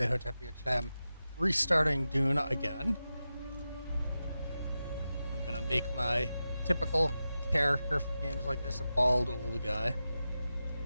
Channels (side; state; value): both; inverted; correlation -0.92